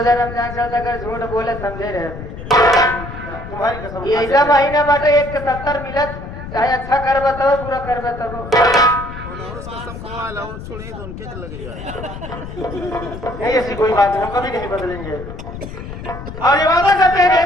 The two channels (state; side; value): noise; left; rumble, 11 dB below the sound